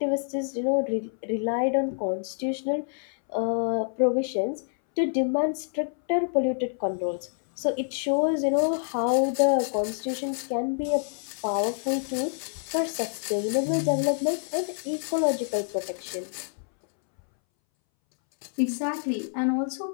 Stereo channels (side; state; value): right; silent; 60 dB below the other